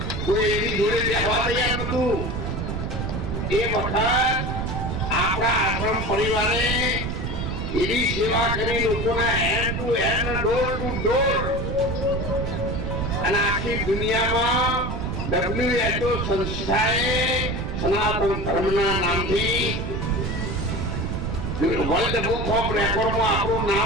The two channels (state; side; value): noise; right; rumble, 3 dB below the sound